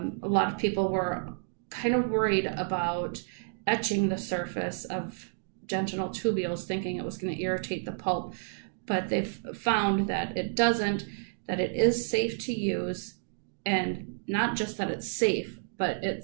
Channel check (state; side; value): silent; left; digital silence